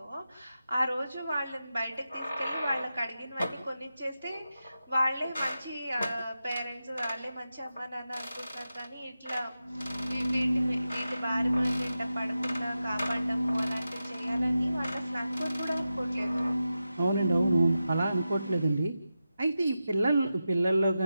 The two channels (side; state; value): both; inverted; correlation -0.91